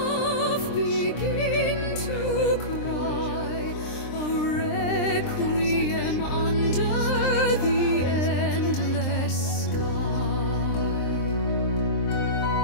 begin to cry a requiem under the endless sky.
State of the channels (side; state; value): right; late; 23 ms